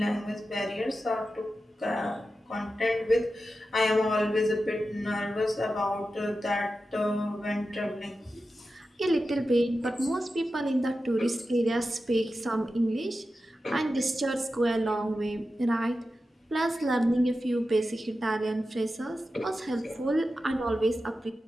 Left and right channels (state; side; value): normal; both; correlation 0.92